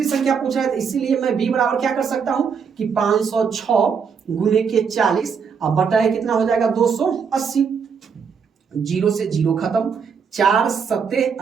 संख्या पूछा है, तो इसीलिए मैं b बराबर क्या कर सकता हूं कि 506 गुने के 40 अब बटा है कितना हो जाएगा 280, 0 से 0 खत्म, 4 सत्ते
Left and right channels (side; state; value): left; quieter; 6.2 dB